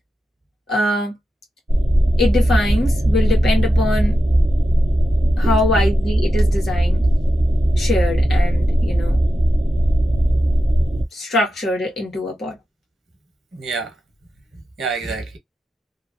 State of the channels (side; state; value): both; normal; correlation 0.90